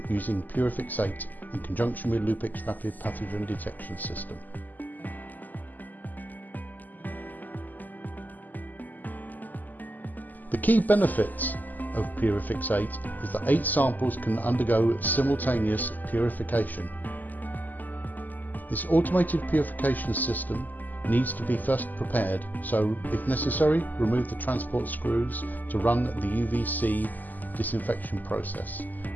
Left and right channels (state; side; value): late; right; 0.084 ms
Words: using Purifix8 in conjunction with Lupix rapid pathogen detection system. The key benefits of Purifix8 is that 8 samples can undergo simultaneous purification. This automated purification system needs to be first prepared, so if necessary, remove the transport screws to run the UVC disinfection process.